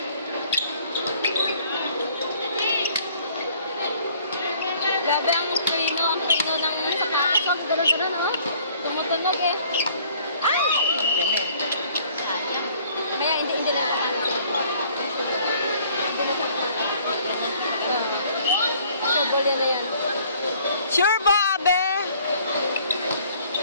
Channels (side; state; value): both; inverted; correlation -0.58